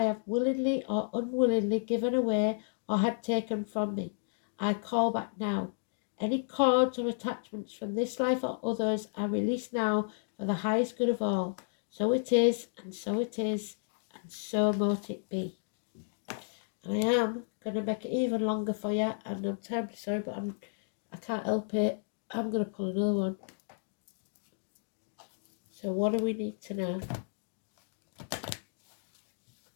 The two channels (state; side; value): silent; right; digital silence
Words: have willingly or unwillingly given away or had taken from me. I call back now. Any cords or attachments from this life or others are released now for the highest good of all. So it is, and so it is, and so mote it be. And I am going to make it even longer for you, and I'm terribly sorry, but I can't help it. I'm going to pull another one. So what do we need to know?